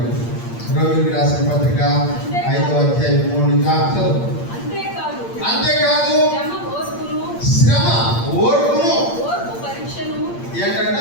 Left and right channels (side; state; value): right; late; 8.7 ms